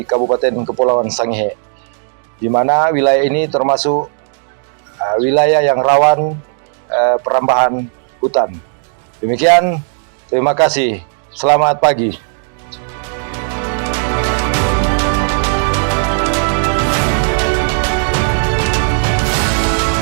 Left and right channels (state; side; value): silent; left; 64 dB below the other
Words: Kabupaten Kepulauan Sangihe, di mana wilayah ini termasuk wilayah yang rawan perambahan hutan. Demikian, terima kasih. Selamat pagi.